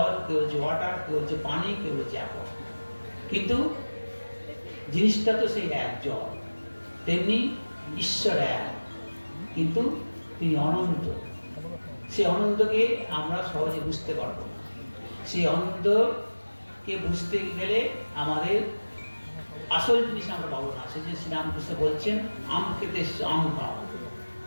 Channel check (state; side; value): inverted; both; correlation -1.00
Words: কেউ বলছে ওয়াটার, কেউ বলছে পানি, কেউ বলছে অ্যাপল, কিন্তু জিনিসটা তো সেই এক জল। তেমনি ঈশ্বর এক, কিন্তু তিনি অনন্ত। সেই অনন্তকে আমরা সহজে বুঝতে পারবো না। সেই অনন্তকে বুঝতে গেলে আমাদের আসল জিনিস আমরা পাবো না। সেই যে শ্রীরামকৃষ্ণ বলছেন আম খেতে আম খাও,